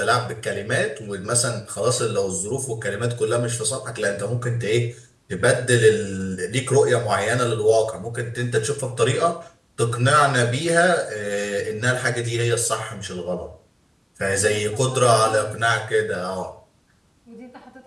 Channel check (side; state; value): both; identical; correlation 1.00